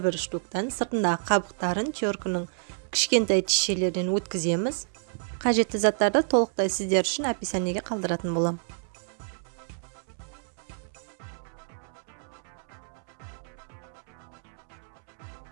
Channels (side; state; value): left; silent; 59 dB below the other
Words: штуктан. Сыртындағы қабықтарын теркінің кішкентай тишелерден өткіземіз. Қажетті заттарды толықтай сіздер үшін описаниеге қалдыратын болам.